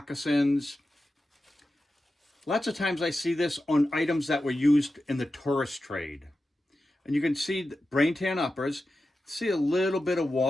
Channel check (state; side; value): normal; both; correlation 0.92